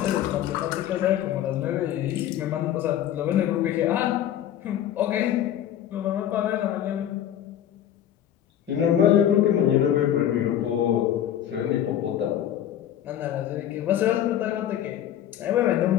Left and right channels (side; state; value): right; quieter; 10.9 dB